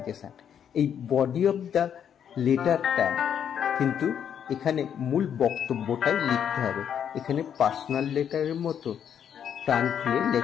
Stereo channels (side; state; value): right; quieter; 8.7 dB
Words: এই বডি অফ দ্য লেটারটা কিন্তু এখানে মূল বক্তব্যটাই লিখতে হবে। এখানে পার্সোনাল লেটারের মতো প্রাণ খুলে